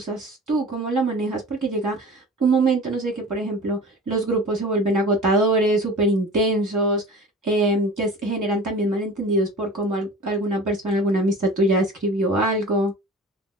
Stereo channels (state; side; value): normal; both; correlation 0.38